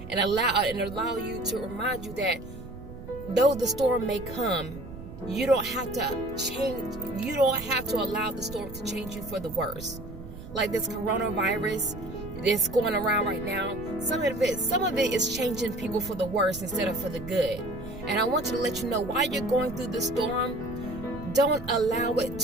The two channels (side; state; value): right; noise; rumble, 13 dB below the sound